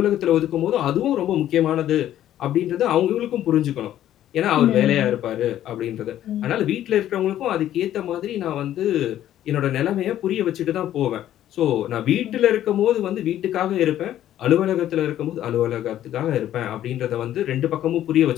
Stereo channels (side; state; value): right; quieter; 12.1 dB